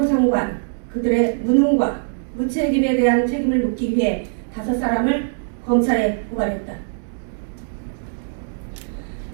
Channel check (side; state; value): left; silent; digital silence